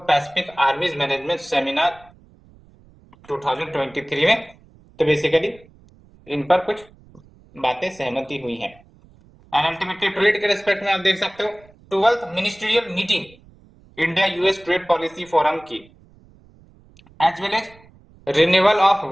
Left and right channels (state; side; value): noise; right; rumble, 27 dB below the sound